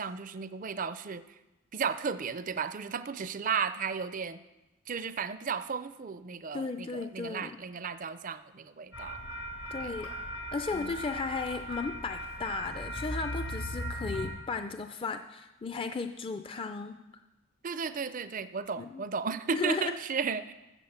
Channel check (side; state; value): both; normal; correlation 0.15